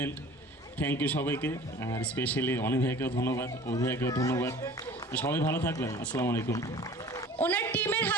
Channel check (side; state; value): both; normal; correlation 0.45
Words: থ্যাংক ইউ সবাইকে, আর স্পেশালি অনি ভাইকেও ধন্যবাদ, অভি ভাইকেও ধন্যবাদ, সবাই ভালো থাকবেন। আসসালামু আলাইকুম। ওনার টিমের